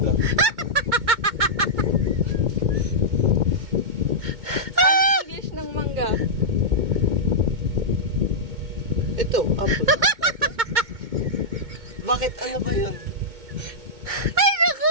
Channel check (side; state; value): left; late; 2.2 ms